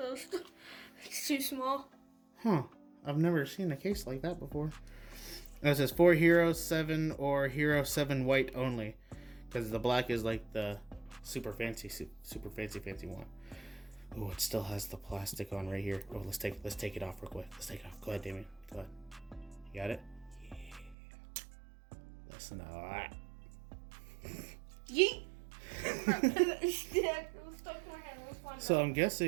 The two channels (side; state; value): left; drops out; at 21.0 s